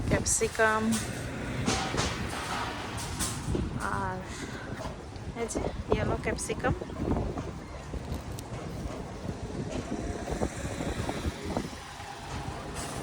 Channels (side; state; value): both; identical; correlation 1.00